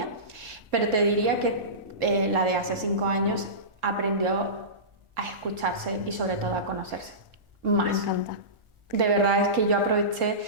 pero te diría que la de hace 5 años aprendió a escucharse y sobre todo a conocerse más. Me encanta. De verdad es que yo aproveché,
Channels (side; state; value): left; late; 1.4 ms